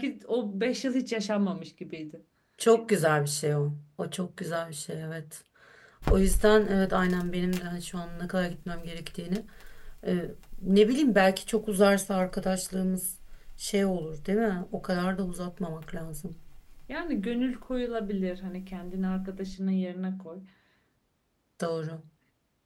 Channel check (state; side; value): identical; both; correlation 1.00